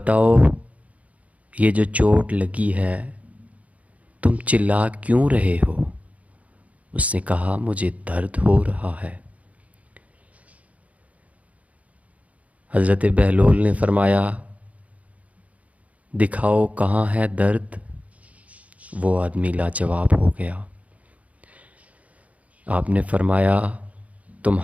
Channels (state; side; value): late; left; 0.068 ms